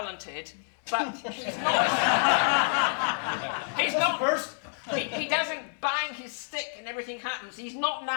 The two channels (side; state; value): right; silent; 59 dB below the other